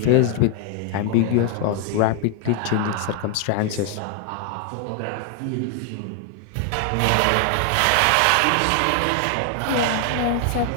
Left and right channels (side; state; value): both; different; correlation 0.00